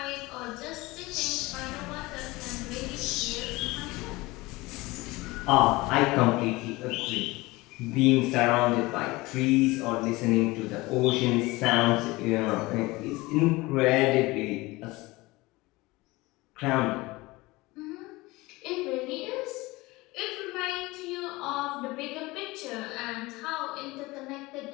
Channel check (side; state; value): right; quieter; 21.5 dB